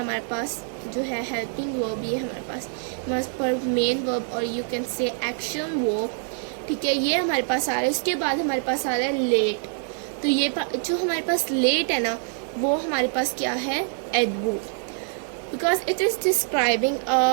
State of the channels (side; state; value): left; silent; 62 dB below the other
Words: पास जो है हेल्पिंग वर्ब, ये हमारे पास मेन वर्ब, और you can say action verb, ठीक है। ये हमारे पास आ रहा है। उसके बाद हमारे पास आ रहा है लेट। तो ये जो हमारे पास लेट है ना, वो हमारे पास क्या है, adverb, because it is describing